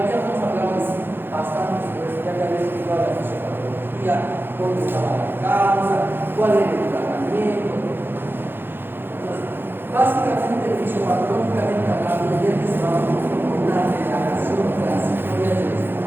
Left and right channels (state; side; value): late; left; 0.10 ms